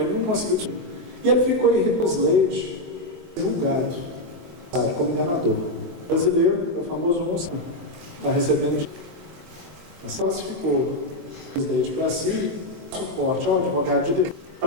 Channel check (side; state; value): left; late; 23 ms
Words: não conseguiu descobrir. E ele ficou em Slade, julgado, como enganador. O brasileiro, é o famoso monstro, está recebendo. Mas classificou o Slade para si, suporte ao advogado de direito,